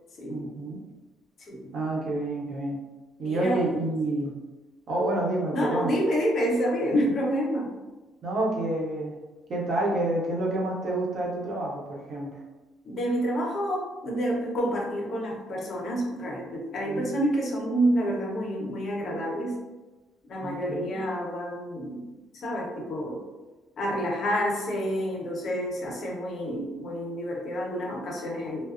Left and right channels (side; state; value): both; normal; correlation 0.71